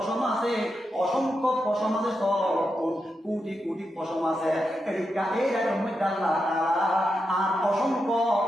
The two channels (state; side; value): normal; both; correlation 0.86